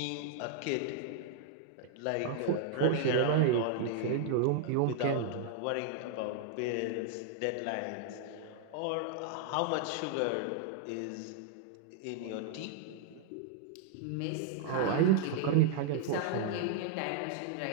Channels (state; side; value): different; both; correlation 0.00